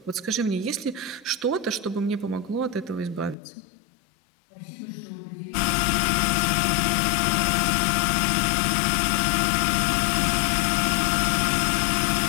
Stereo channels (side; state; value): right; drops out; at 3.4 s